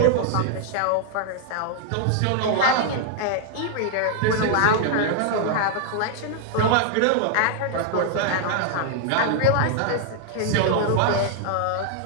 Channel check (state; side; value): different; both; correlation 0.00